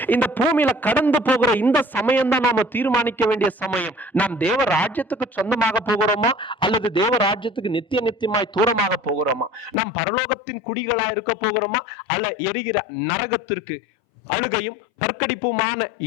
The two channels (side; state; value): right; drops out; at 9.8 s